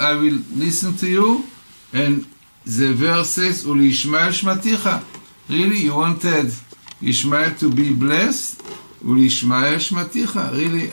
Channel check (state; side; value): inverted; both; correlation -1.00